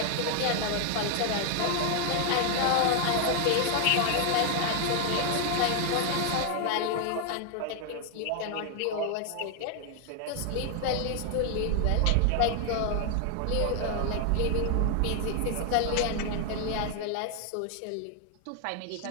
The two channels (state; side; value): different; both; correlation 0.00